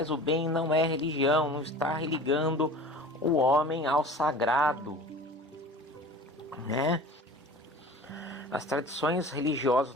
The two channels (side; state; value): both; normal; correlation 0.40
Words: o bem, não é religião. Não está religando o homem ao sagrado, né? As tradições religiosas